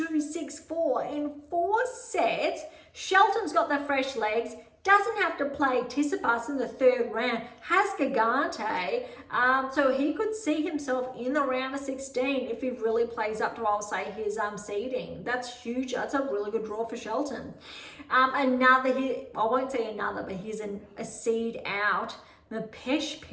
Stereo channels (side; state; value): both; identical; correlation 1.00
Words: 6-4 in 4 sets. Shelton's got the fresh legs, doesn't have to play Tsitsipas in the 3rd round, has Gigante, so he could see himself in the round of 16 if he really plays up to, I'll say, his seeding. That's huge. That's a really good draw for Shelton. I won't say another, but here's a seed out. The Pesh